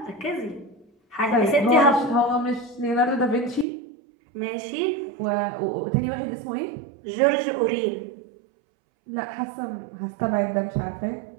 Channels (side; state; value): left; drops out; at 3.7 s